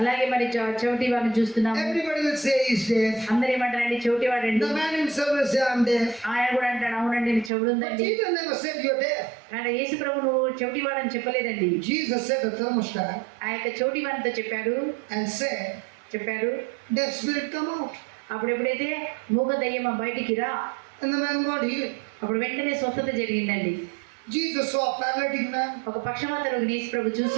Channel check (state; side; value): drops out; left; at 7.5 s